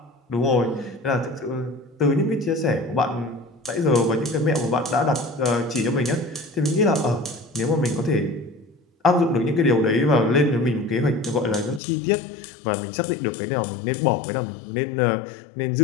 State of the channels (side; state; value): right; drops out; at 11.8 s